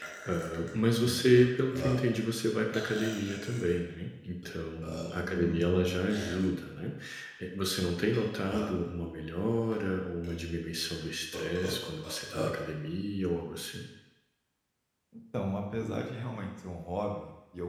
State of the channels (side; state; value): both; identical; correlation 1.00